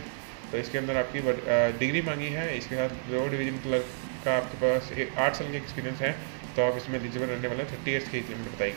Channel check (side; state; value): left; silent; digital silence